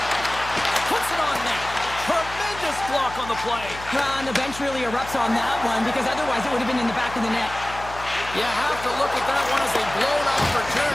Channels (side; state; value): left; noise; hum, 14 dB below the sound